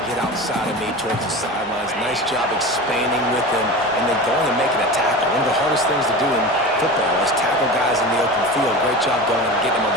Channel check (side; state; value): both; normal; correlation 0.30